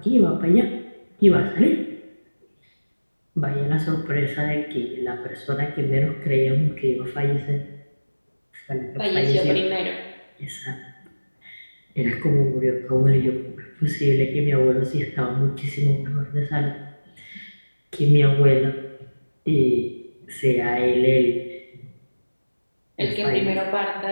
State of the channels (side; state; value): both; inverted; correlation -1.00